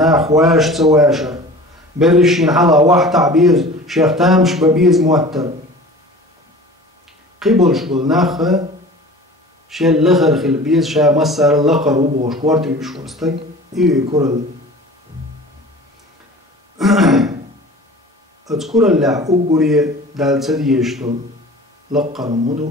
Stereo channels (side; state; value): both; normal; correlation 0.41